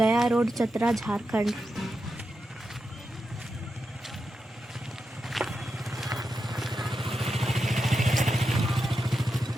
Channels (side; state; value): both; normal; correlation 0.88